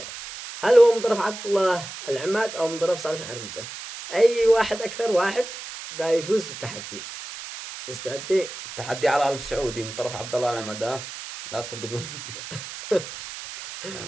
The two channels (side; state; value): right; noise; hiss, 11 dB below the sound